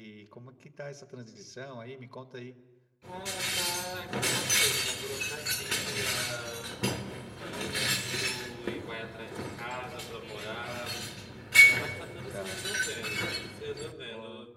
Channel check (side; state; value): both; identical; correlation 1.00